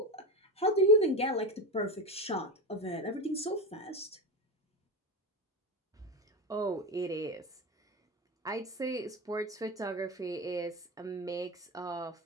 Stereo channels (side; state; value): both; normal; correlation 0.19